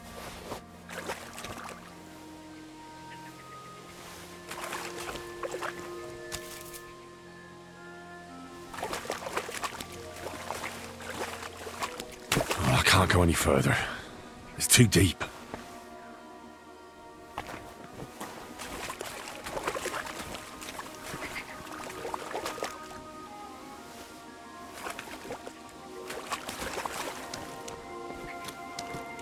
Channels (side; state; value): both; identical; correlation 1.00